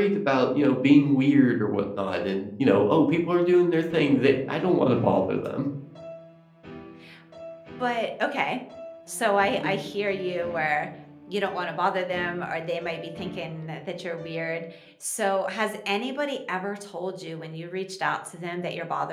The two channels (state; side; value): identical; both; correlation 1.00